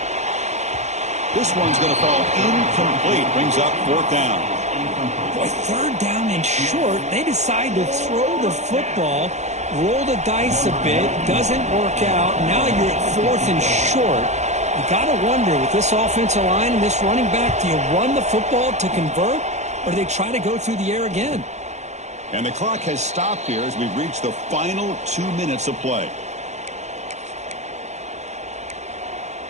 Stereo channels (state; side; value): late; left; 0.33 ms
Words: This one's going to fall incomplete. Brings up 4th down. Boy, 3rd down and short. They decide to throw the football, roll the dice a bit. Doesn't work out. Now you're at 4th and short. You got to wonder, with this offensive line and this running back, do you run the football to convert, or do they try to go through the air again? And the clock has stopped here as we've reached the final 2 minutes of play.